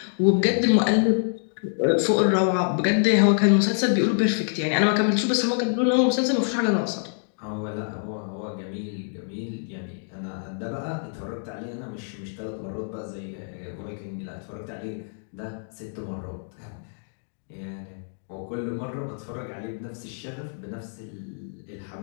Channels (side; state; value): right; silent; digital silence